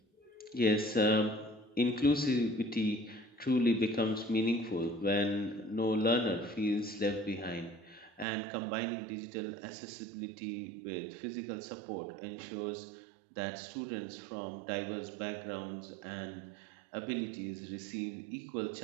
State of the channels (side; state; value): left; drops out; at 8.2 s